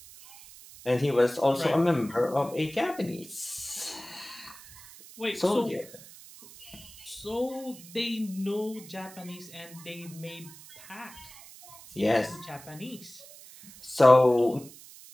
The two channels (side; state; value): right; noise; hiss, 19 dB below the sound